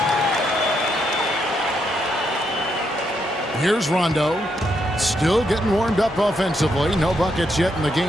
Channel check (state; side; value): normal; both; correlation 0.78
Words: Here's Rondo. Still getting warmed up offensively. No buckets yet in the